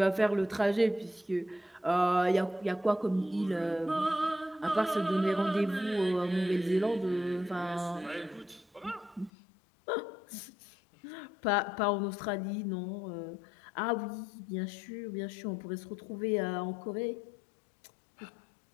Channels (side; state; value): right; drops out; at 9.3 s